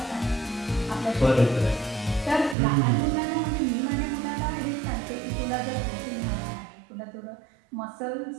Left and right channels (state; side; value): drops out; left; at 2.6 s